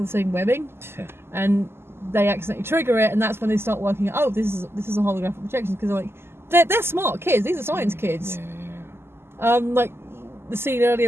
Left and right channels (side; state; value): left; late; 0.12 ms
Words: the same webbing, Yeah. and they accidentally trigger it, and that's when they start working out. Oh, this is a holographic projection because they're smart kids. These are science kids. Yeah. Like the scene